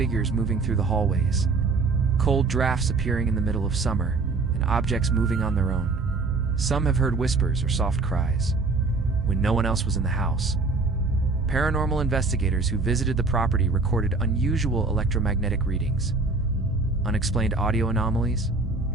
moving through the hallways, cold drafts appearing in the middle of summer, and objects moving on their own. Some have heard whispers or soft cries when no one else was in the house. Paranormal investigators who visited the property recorded unusual electromagnetic readings, unexplained audio anomalies,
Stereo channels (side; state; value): left; quieter; 3.8 dB